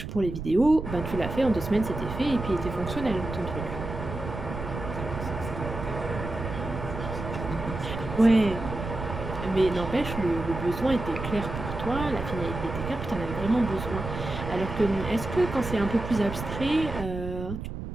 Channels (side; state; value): right; noise; rumble, 7 dB below the sound